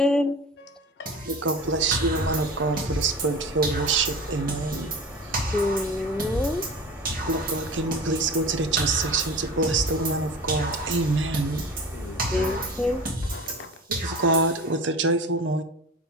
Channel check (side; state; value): both; normal; correlation 0.34